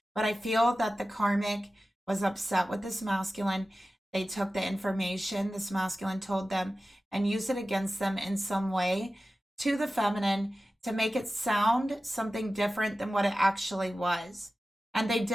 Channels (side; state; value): both; normal; correlation 0.95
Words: But I feel that the karmic was upset with this masculine. They took the information this masculine told them and used it against them in some way to the feminine to make it sound something different than what it actually was. And they